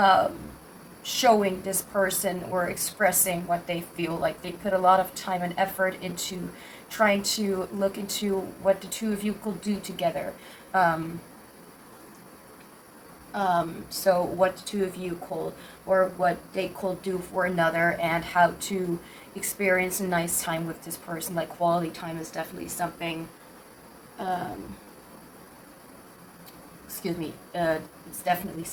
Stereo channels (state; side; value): identical; both; correlation 1.00